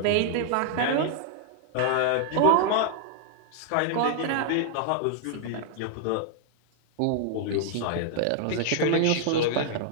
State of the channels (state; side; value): different; both; correlation 0.00